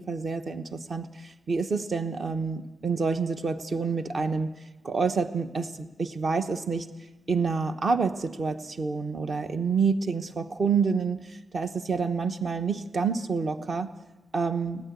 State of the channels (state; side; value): quieter; left; 4.6 dB